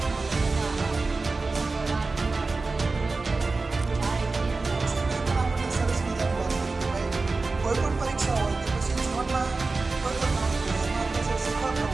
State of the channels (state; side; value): quieter; left; 3.8 dB